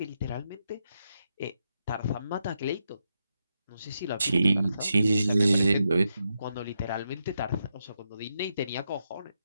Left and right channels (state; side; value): inverted; both; correlation -0.84